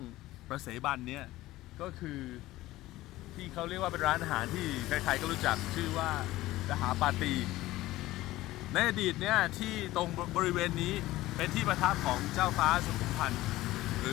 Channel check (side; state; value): right; quieter; 17.0 dB